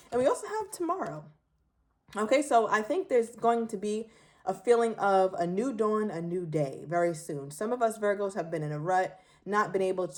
And we also have tomorrow. Okay, so I think there's going to be a feeling of a new dawn, a new day very soon. Some of us Virgos have been in a rut, not been able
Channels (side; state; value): both; identical; correlation 1.00